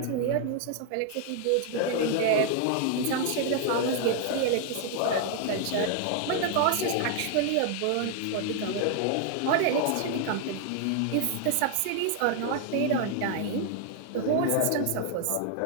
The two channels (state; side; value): different; both; correlation 0.00